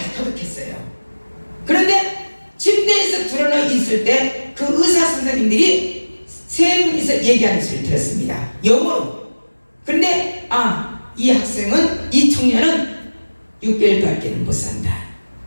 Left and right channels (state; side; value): inverted; both; correlation -1.00